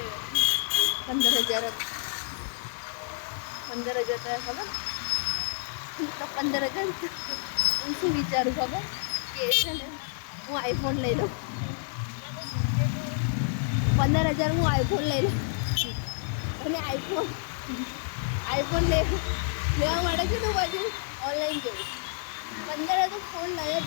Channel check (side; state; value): right; silent; 58 dB below the other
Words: 15,000 થાય ખબર. તો 15,000 હું શું વિચારું ખબર કે છે ને હું આઈફોન લઈ લઉં. 15,000 હું આઈફોન લઈ લઉં અને આઈફોન લેવા માટે છે ને હું બાજુ ઓનલાઈન જોઉં. 15 તો ફોન લઈ જ